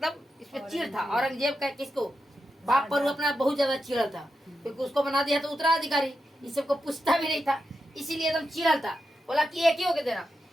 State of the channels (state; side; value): normal; both; correlation 0.88